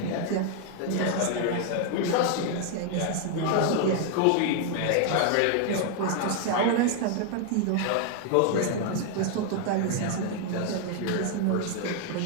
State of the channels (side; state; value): both; different; correlation 0.00